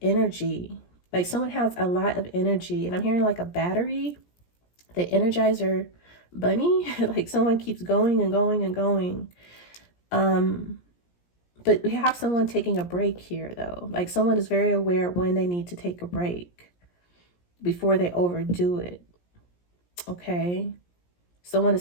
energy. Like someone has a lot of energy, and I'm hearing like a battery, the Energizer bunny. Like someone keeps going and going and going. But we have someone taking a break here though. Like someone is very aware when they need to take a break before they overdo it. Okay, someone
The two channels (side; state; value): right; late; 17 ms